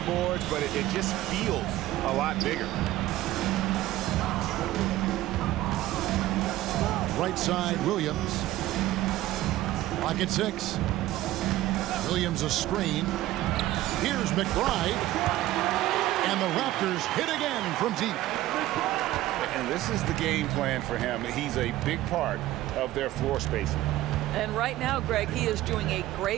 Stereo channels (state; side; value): quieter; left; 15.5 dB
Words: boards, but it just feels a lot bigger. Right side, Williams. Lock at 6. Williams a screen. Here's McBride. And the Raptors hit again from deep. And this is the game plan for him. He's a big part of their floor spacing. And right now, Greg, he is doing a